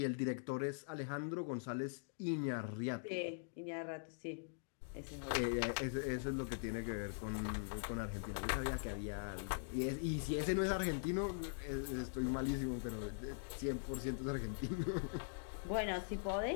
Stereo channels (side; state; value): right; silent; digital silence